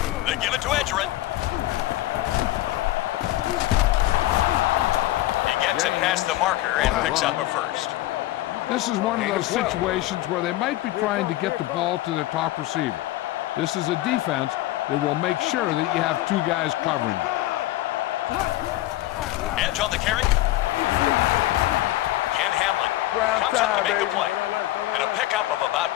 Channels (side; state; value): right; quieter; 16.2 dB